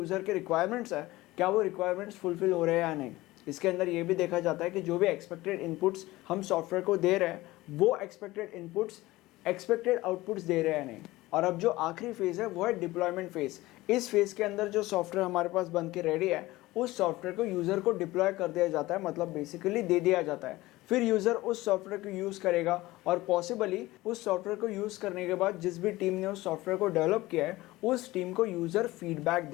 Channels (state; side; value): quieter; right; 18.7 dB